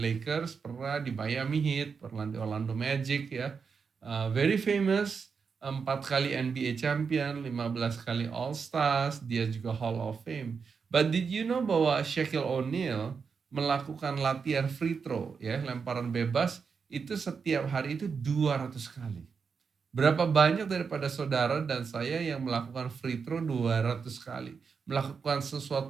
pernah di Miami Heat, pernah di Orlando Magic, ya. Very famous, 4 kali NBA champion, 15 kali All Stars, dia juga Hall of Fame. But did you know bahwa Shaquille O'Neal melakukan latihan free throw, ya, lemparan bebas itu setiap hari itu 200 kali. Berapa banyak daripada saudara dan saya yang melakukan free throw 200 kali? Melakukan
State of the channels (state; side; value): quieter; left; 5.7 dB